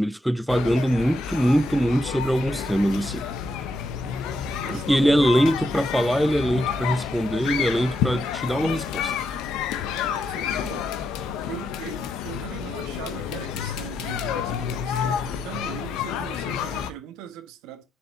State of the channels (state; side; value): normal; both; correlation 0.80